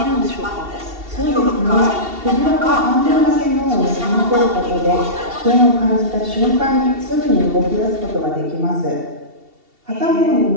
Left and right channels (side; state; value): left; late; 2.7 ms